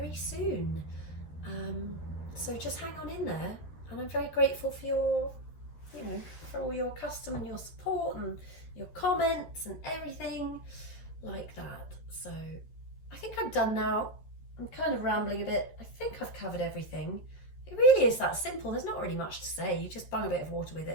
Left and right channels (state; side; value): late; right; 12 ms